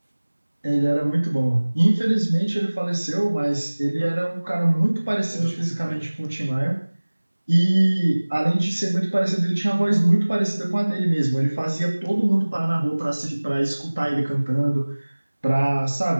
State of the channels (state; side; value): inverted; both; correlation -1.00